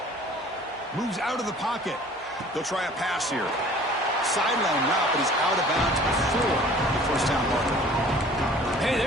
Moves out of the pocket. They'll try a pass here. Sideline route, but he's out of bounds before the 1st down marker. Hey,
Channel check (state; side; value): normal; both; correlation 0.50